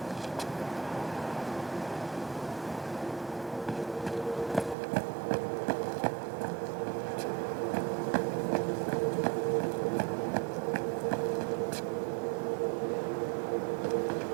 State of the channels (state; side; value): drops out; left; at 4.8 s